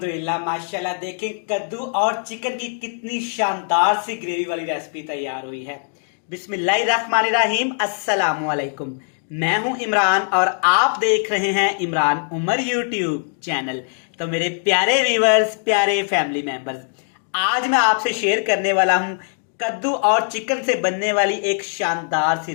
माशाल्लाह देखें कद्दू और चिकन की कितनी शानदार सी ग्रेवी वाली रेसिपी तैयार हुई है। बिस्मिल्लाहिर्रहमानिर्रहीम, अस्सलामु अलैकुम। मैं हूं इमरान और आप देख रहे हैं इमरान उमर यूट्यूब चैनल। तो मेरे प्यारे व्यूवर्स, प्यारे फैमिली मेंबर्स, आज मैं आपसे शेयर करने वाला हूं कद्दू और चिकन से बनने वाली एक शानदार सी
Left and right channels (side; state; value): right; silent; 65 dB below the other